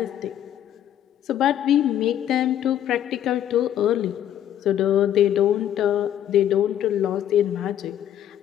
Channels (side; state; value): right; quieter; 10.8 dB